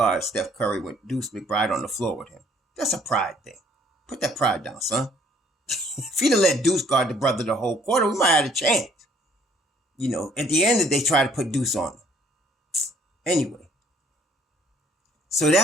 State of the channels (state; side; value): normal; both; correlation 0.61